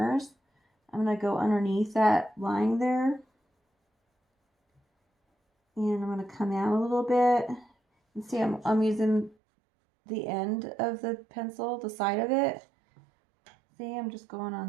I'm going to go underneath that line there. And I'm going to come out a little bit. And see, I'm using the end of the pencil, the side of it. See, I'm just going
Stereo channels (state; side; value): drops out; left; at 9.3 s